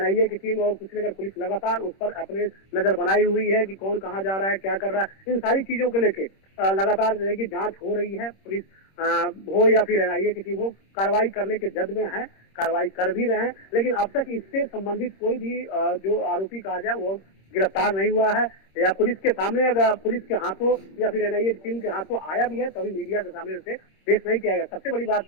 की टीम और कुशीनगर पुलिस लगातार उस पर अपने नजर बनाई हुई है कि कौन कहाँ जा रहा है, क्या कर रहा है। इन सारी चीजों को लेके लगातार जो है कि जांच हो रही है। पुलिस हो या फिर एनआईए की टीम हो, कार्रवाई करने के जद में है, कार्रवाई कर भी रहे हैं, लेकिन अब तक इससे संबंधित कोई भी जो आरोपी कहा जाए वो गिरफ्तार नहीं हुआ है या पुलिस के सामने अगर पुलिस के हाथों या फिर एनआईए की टीम के हाथों आया भी है तभी मीडिया के सामने उसे पेश नहीं किया गया। सबसे बड़ी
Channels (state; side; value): late; right; 26 ms